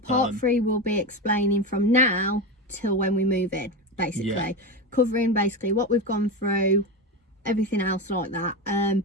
3 will be explaining from now till when we move in, basically. Covering basically what we've gone through, everything else like that.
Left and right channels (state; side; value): normal; both; correlation 0.18